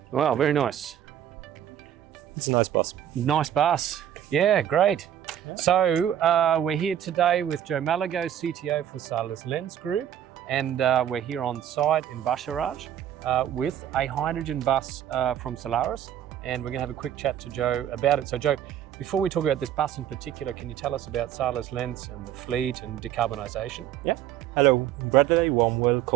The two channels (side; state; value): left; quieter; 10.7 dB